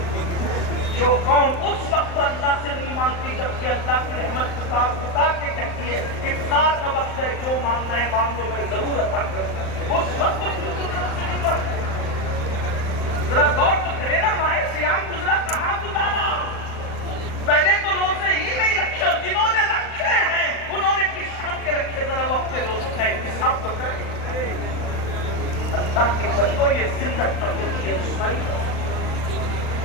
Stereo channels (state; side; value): late; right; 39 ms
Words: جو قوم اس وقت اللہ سے نہیں مانگتی جبکہ اللہ کی رحمت پکار کے کہتی ہے افطار کا وقت ہے، جو مانگنا ہے مانگ لو میں ضرور عطا کروں، اس وقت ذرا غور تو کرے نا، ماہ سیام گزرا کہاں گزارا؟ پہلے تو روزے ہی نہیں رکھے، اور جنہوں نے رکھے ہیں انہوں نے کس شان کے رکھے؟ ذرا وہ اپنے روزے چاہے حساب تو کریں۔ اللہ کے بندوں یہ زندہ ہوتی ہے رسوائی۔